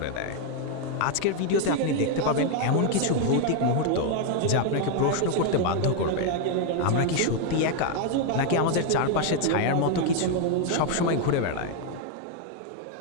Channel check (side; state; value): both; different; correlation 0.01